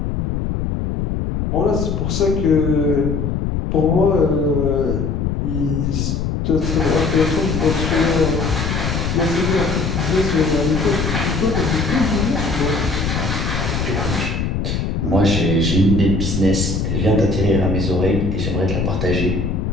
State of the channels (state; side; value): noise; left; rumble, 1 dB below the sound